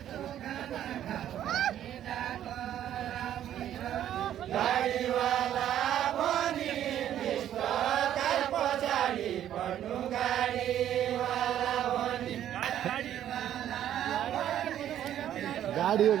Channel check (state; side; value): quieter; left; 11.1 dB